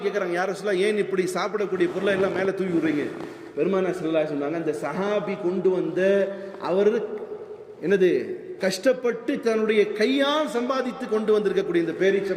கேட்குறாங்க, யார் ரசூலல்லாஹ் ஏன் இப்படி சாப்பிடக்கூடிய பொருளை எல்லாம் மேலே தூவி விடுறீங்க? பெருமானார் ஸல்லல்லாஹு அலைஹி சொன்னாங்க, இந்த சஹாபி கொண்டு வந்த அவர் என்னது கஷ்டப்பட்டு தன்னுடைய கையால் சம்பாதித்து கொண்டு வந்திருக்கக்கூடிய இந்த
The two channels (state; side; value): identical; both; correlation 1.00